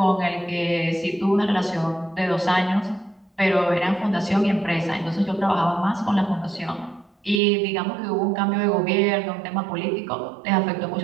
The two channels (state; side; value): drops out; left; at 7.4 s